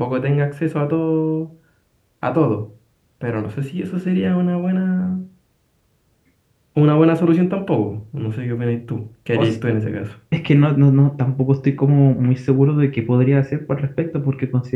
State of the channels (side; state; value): both; identical; correlation 1.00